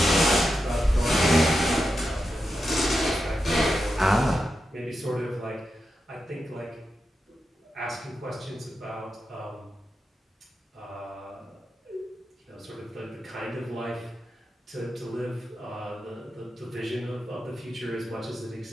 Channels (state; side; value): normal; both; correlation 0.88